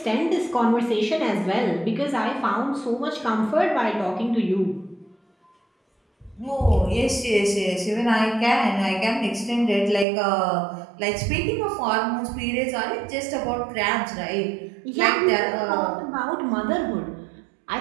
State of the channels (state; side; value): drops out; left; at 10.1 s